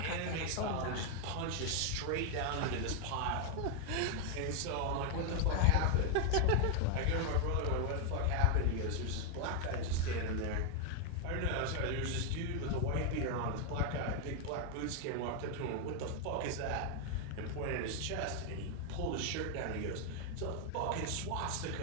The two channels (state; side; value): different; both; correlation 0.01